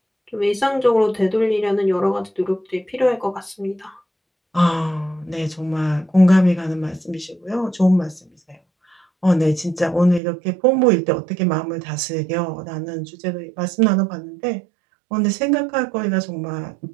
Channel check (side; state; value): left; drops out; at 10.2 s